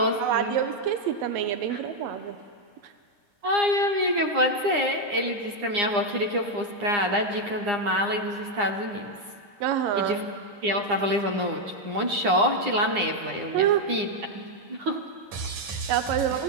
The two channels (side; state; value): left; late; 10 ms